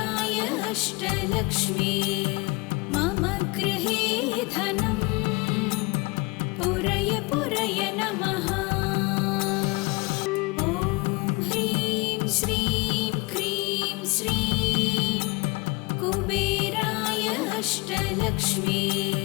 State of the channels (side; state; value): right; quieter; 26.4 dB